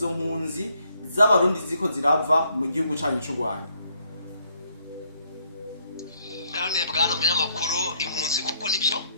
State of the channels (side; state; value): both; inverted; correlation -0.70